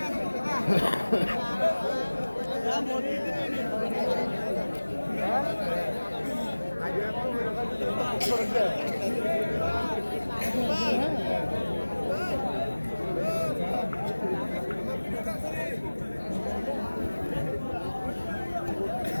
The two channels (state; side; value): inverted; both; correlation -1.00